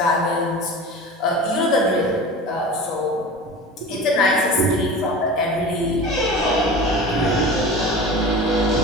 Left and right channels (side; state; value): both; normal; correlation 0.35